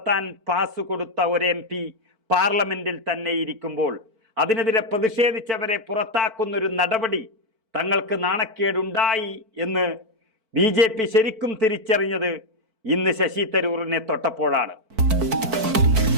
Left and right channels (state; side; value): late; left; 4.5 ms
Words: പാസ് കൊടുത്ത ഒരു MP പാർലമെന്റിൽ തന്നെ ഇരിക്കുമ്പോൾ അതിനെതിരെ പ്രതിഷേധിച്ചവരെ പുറത്താക്കുന്നൊരു നടപടി തങ്ങൾക്ക് നാണക്കേടുണ്ടായി എന്ന് BJP ശരിക്കും തിരിച്ചറിഞ്ഞത് ഇന്ന് ശശി തരൂരിനെ തൊട്ടപ്പോഴാണ്.